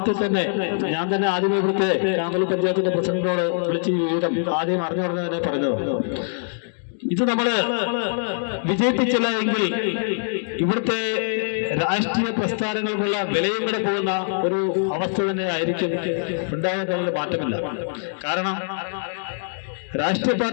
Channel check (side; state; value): right; silent; digital silence